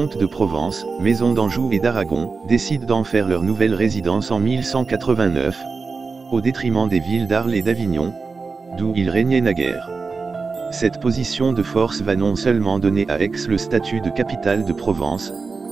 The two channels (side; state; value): left; quieter; 4.4 dB